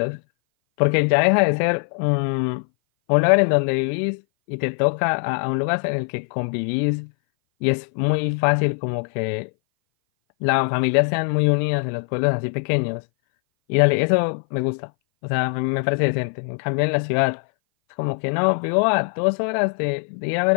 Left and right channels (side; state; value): right; silent; 59 dB below the other